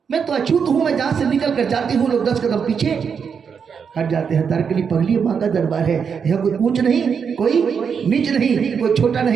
मैं तो अछूत हूं। मैं जहां से निकल कर जाती हूँ लोग 10 कदम पीछे हट जाते हैं। तारकली पगली मां का दरबार है। यहाँ कोई ऊंच नहीं, कोई नीच नहीं, कोई छोटा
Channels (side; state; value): left; quieter; 6.5 dB